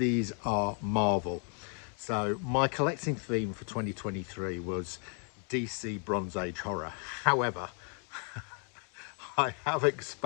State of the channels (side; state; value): right; quieter; 39.3 dB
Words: are Marvel. So my collecting theme for 2023 was DC Bronze Age horror. However, I have